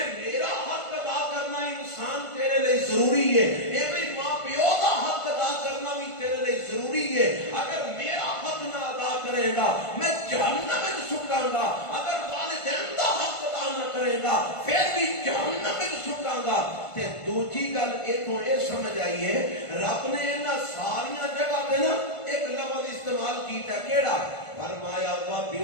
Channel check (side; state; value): right; late; 1.5 ms